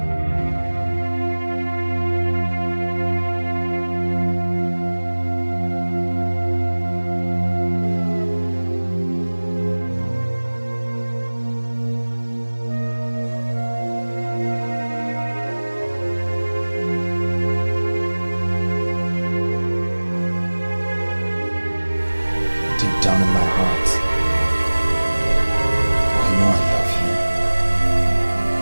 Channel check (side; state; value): both; inverted; correlation -1.00